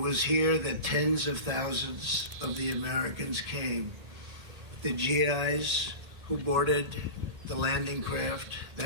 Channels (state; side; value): late; left; 1.8 ms